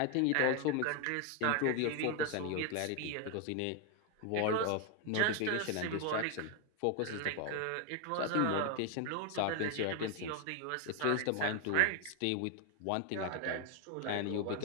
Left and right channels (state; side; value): different; both; correlation 0.01